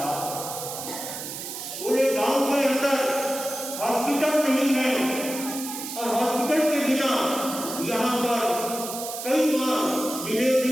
पूरे गांव के अंदर हॉस्पिटल नहीं है और हॉस्पिटल के बिना यहाँ पर कई बार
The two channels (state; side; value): noise; right; hiss, 8 dB below the sound